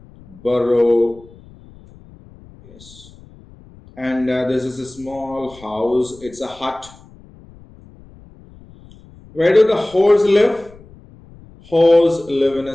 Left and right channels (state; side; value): noise; left; rumble, 23 dB below the sound